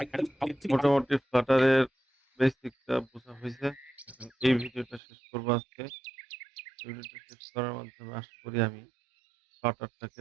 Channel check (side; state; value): left; drops out; at 5.0 s